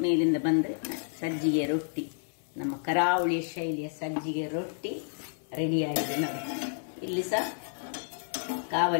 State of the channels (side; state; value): right; silent; 58 dB below the other